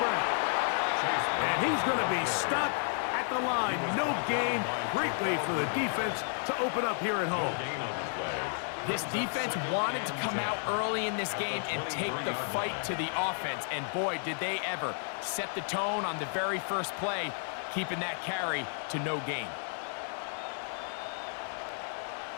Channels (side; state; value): right; silent; 56 dB below the other